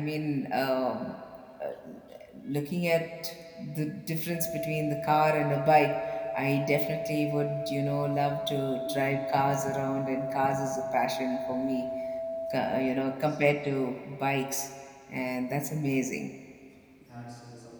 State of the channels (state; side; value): identical; both; correlation 1.00